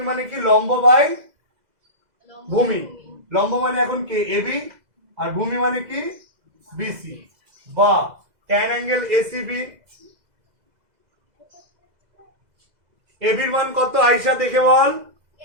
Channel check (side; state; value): left; late; 2.0 ms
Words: মানে কি? লম্ব বাই ভূমি। লম্ব মানে এখন কে? এবি, আর ভূমি মানে কি? বিসি। বা ট্যান অ্যাঙ্গেল এসিবি, এবির মান কত আয়শা দেখে বল?